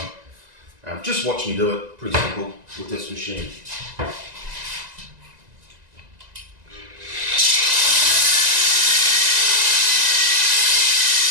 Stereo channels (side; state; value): left; late; 1.9 ms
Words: just watch me do it, pretty simple with this machine.